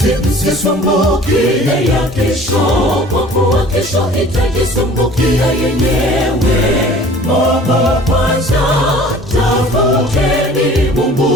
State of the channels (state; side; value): normal; both; correlation 0.47